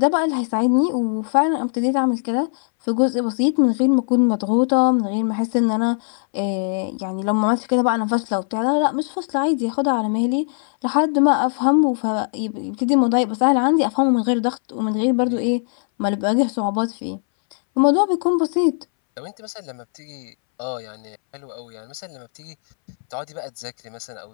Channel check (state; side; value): silent; right; 63 dB below the other